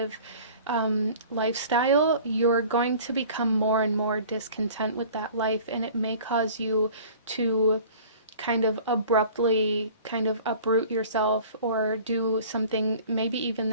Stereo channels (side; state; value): both; inverted; correlation -0.46